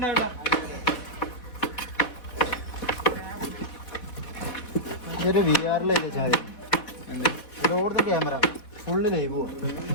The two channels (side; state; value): right; late; 4.1 ms